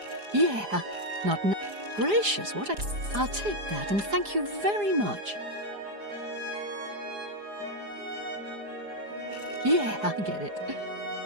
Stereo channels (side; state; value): left; late; 4.9 ms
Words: Yeah. Not now. Gracious, what a... I'll take that and thank you very much. Yeah, I get it.